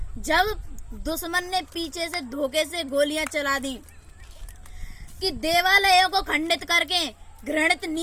जब दुश्मन ने पीछे से धोखे से गोलियां चला दी, कि देवालयों को खंडित करके घृणित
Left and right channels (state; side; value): identical; both; correlation 1.00